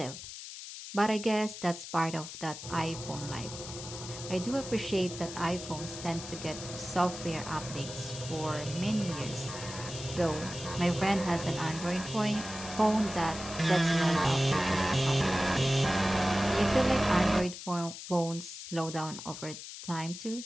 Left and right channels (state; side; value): noise; left; hiss, 11 dB below the sound